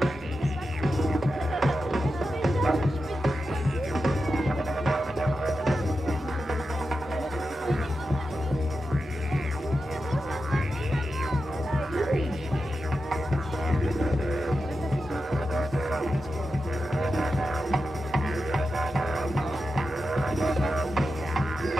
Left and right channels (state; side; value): normal; both; correlation 0.90